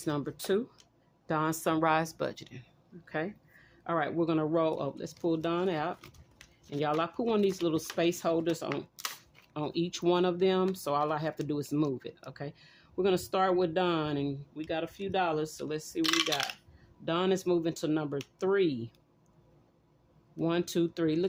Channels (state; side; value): identical; both; correlation 1.00